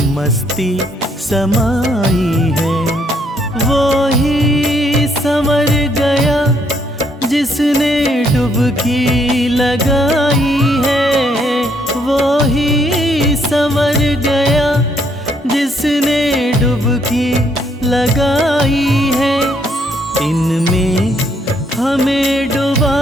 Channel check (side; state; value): both; normal; correlation 0.71